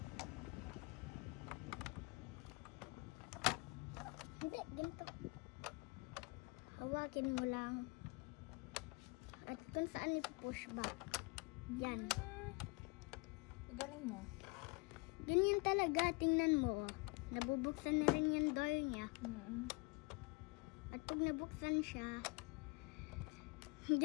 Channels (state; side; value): quieter; right; 28.5 dB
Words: Hindi, ganito. Hawakin mo lang. At kung saan push back. Yan. Galing mo. Ganyan talaga, tingnan mo. Nabubuksan na rin yung door niya. At pag nabuksan siya,